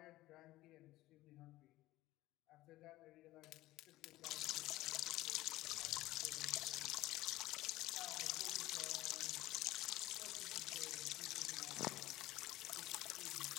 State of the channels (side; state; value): right; quieter; 17.0 dB